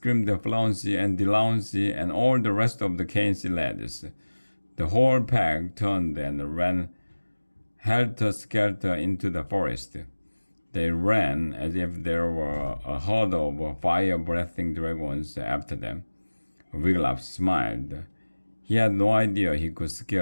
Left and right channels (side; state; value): both; inverted; correlation -1.00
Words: Flauncey and Delancey and all the rest of the KNC lads. The whole pack turned and ran helter-skelter into the forest. They ran as if there were a herd of fire-breathing dragons after them. Wigglytuff smiled. He had no idea he could